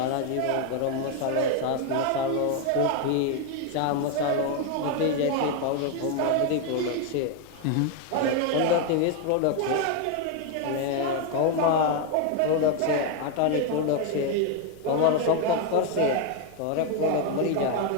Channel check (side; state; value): both; different; correlation 0.01